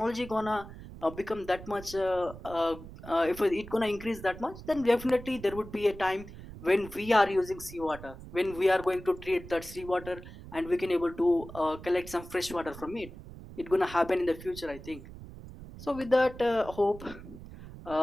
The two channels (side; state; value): right; noise; rumble, 14 dB below the sound